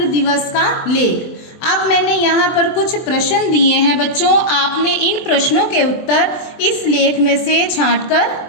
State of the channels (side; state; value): right; late; 23 ms